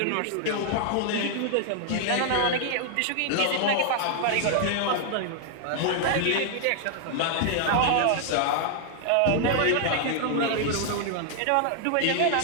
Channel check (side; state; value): both; different; correlation 0.00